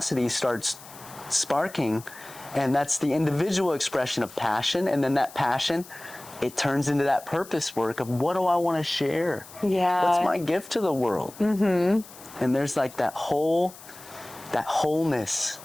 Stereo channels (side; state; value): left; noise; hiss, 19 dB below the sound